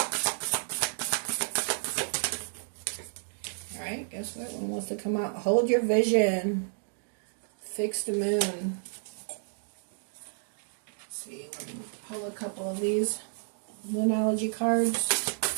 Alright, guess what? One wants to come out. Hold your vision. Fix the moon. Let's see, let me pull a couple of these Moonology cards.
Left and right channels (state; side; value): silent; left; digital silence